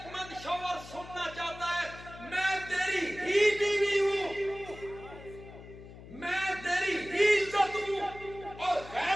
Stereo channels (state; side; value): noise; left; hum, 16 dB below the sound